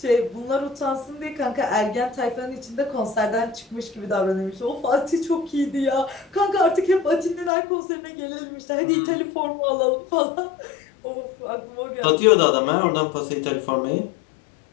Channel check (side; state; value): right; drops out; at 7.5 s